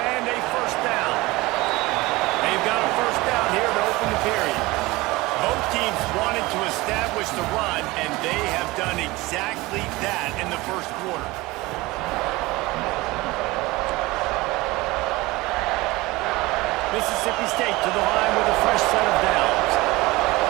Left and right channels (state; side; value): quieter; left; 21.0 dB